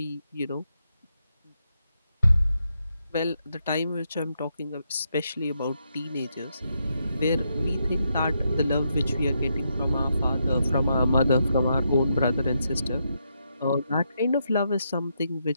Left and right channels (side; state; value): both; inverted; correlation -0.81